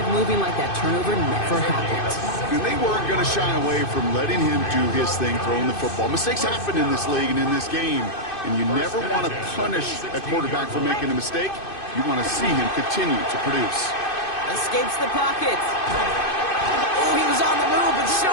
moving like that turnover never happened. And they weren't going to shy away from letting him do his thing, throwing the football. Mistakes happen in this league and in this game. And you never want to punish a quarterback for making a mistake. You want to see him continue to produce. Escapes the pocket. Oh, he was on the move, but so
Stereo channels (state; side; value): late; right; 2.5 ms